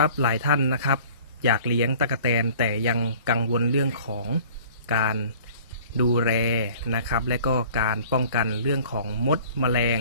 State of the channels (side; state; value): both; inverted; correlation -0.48